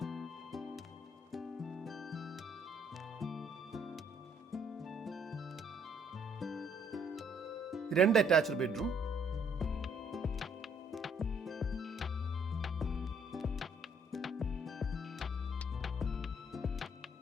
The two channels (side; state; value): both; normal; correlation 0.66